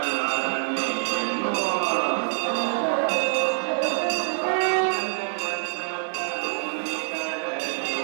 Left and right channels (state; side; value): silent; left; 61 dB below the other